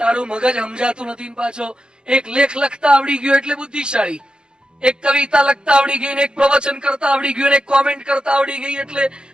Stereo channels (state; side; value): late; left; 0.049 ms